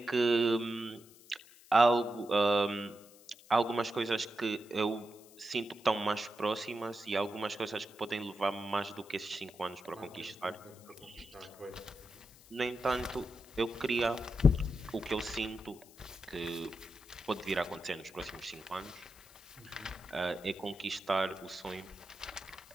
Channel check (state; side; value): noise; left; hiss, 23 dB below the sound